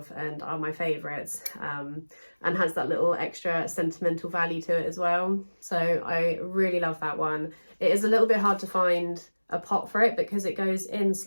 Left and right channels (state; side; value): inverted; both; correlation -1.00